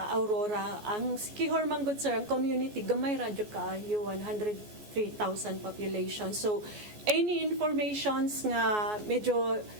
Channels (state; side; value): late; left; 14 ms